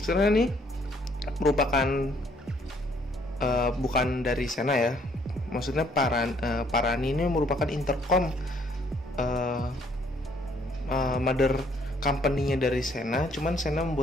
Sebenarnya nih merupakan bukan dari Sena ya, maksudnya Parani ini merupakan intercom mother company-nya dari Sena, cuman Sena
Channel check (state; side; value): normal; both; correlation 0.65